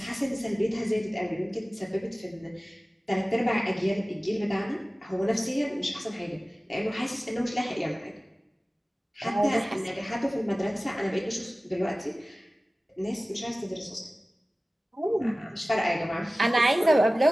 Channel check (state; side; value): normal; both; correlation 0.97